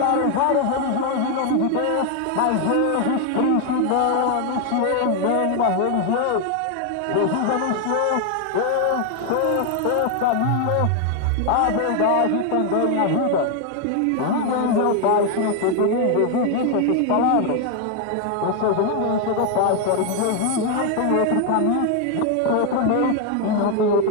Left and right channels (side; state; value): both; different; correlation 0.01